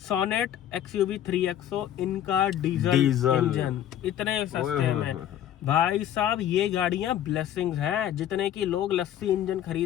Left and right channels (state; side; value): quieter; right; 11.0 dB